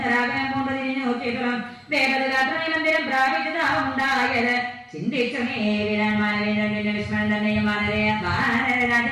രാഘവൻ കൊണ്ട് തിരിഞ്ഞു നോക്കിയിട്ടും ദേവദാത്രി മന്ദിരം പ്രാപിച്ചതാവുണ്ടായത് ചിന്തിച്ചു മേവിനാൻ മാനവേന്ദ്രന്റെ വിസ്മരം തന്നെയും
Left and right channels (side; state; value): both; identical; correlation 1.00